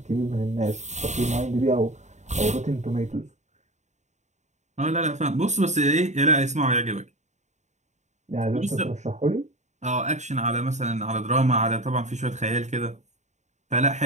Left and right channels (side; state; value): left; late; 0.34 ms